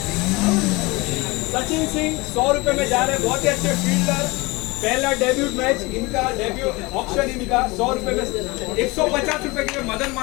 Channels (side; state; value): right; quieter; 24.0 dB